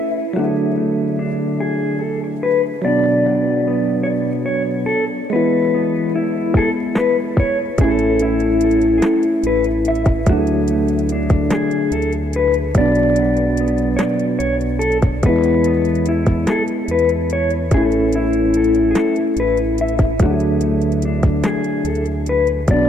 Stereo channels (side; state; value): both; normal; correlation 0.77